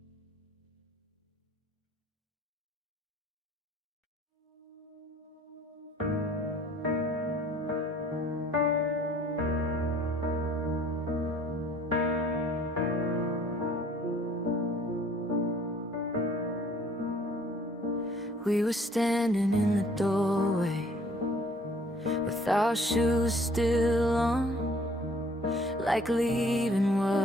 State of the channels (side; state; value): both; normal; correlation 0.57